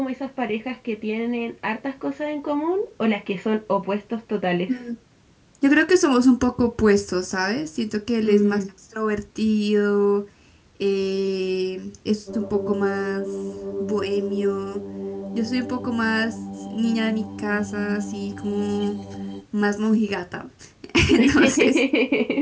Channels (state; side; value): identical; both; correlation 1.00